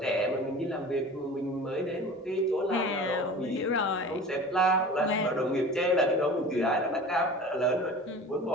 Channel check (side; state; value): both; normal; correlation 0.39